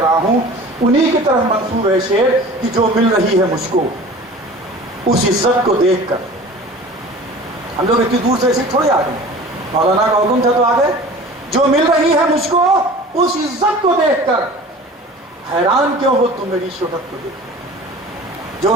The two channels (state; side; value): normal; both; correlation 0.41